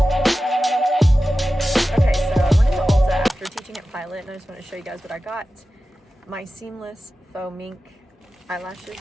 just want to show you guys what I got. My seamless faux mink eyelashes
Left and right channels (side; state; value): both; normal; correlation 0.94